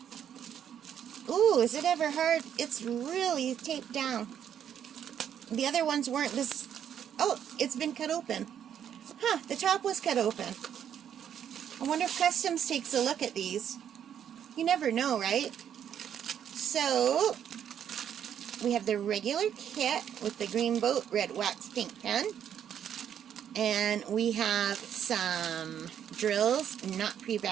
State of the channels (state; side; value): quieter; left; 9.2 dB